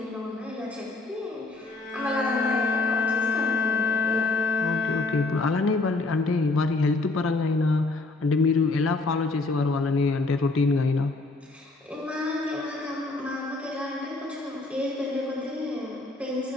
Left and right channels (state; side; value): quieter; right; 3.3 dB